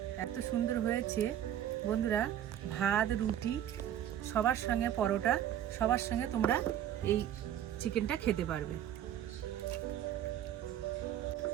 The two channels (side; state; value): left; quieter; 10.9 dB